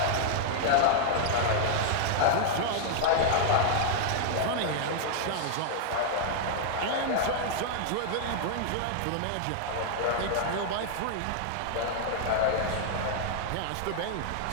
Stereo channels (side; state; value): both; different; correlation -0.01